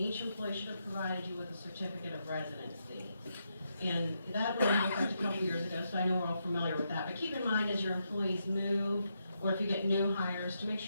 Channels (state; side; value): inverted; both; correlation -0.82